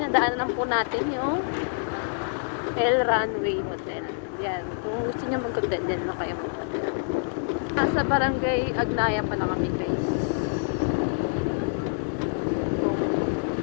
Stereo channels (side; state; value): right; silent; digital silence